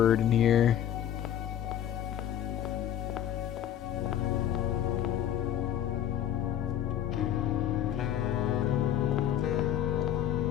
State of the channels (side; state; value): right; quieter; 10.7 dB